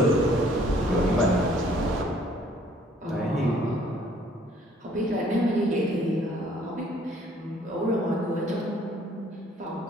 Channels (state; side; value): normal; both; correlation 0.60